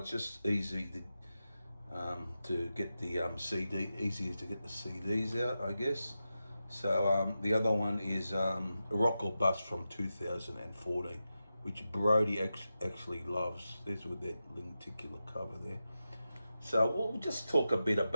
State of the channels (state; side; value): inverted; both; correlation -0.91